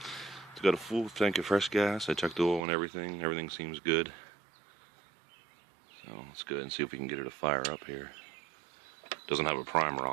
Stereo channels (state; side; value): drops out; left; at 2.7 s